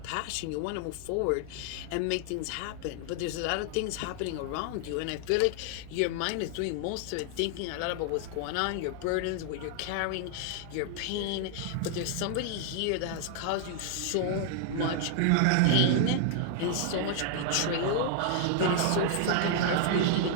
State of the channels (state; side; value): different; both; correlation -0.01